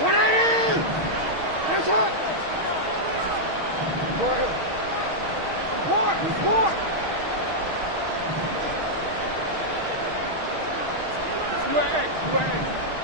That's hot. Report.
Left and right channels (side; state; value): left; late; 6.4 ms